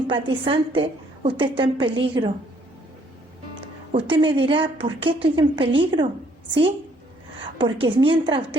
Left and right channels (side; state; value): both; normal; correlation 0.65